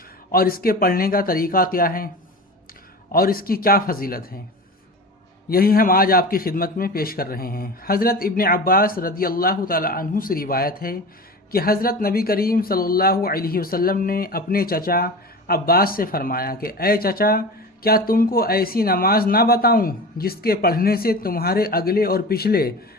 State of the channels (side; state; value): both; normal; correlation 0.31